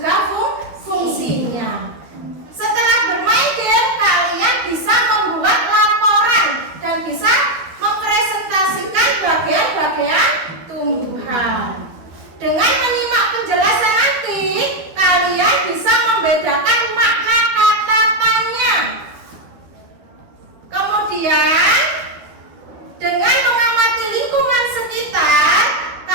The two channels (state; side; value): late; left; 12 ms